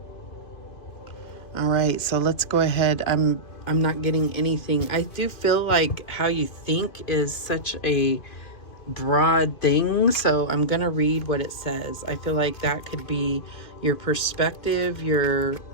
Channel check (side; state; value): right; late; 2.5 ms